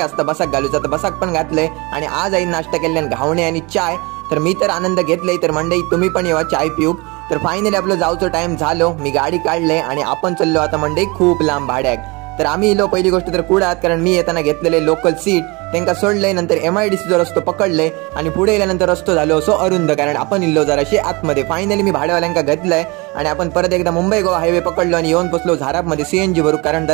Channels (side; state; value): left; quieter; 26.2 dB